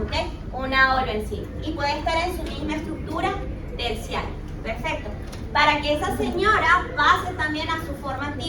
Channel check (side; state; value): both; identical; correlation 1.00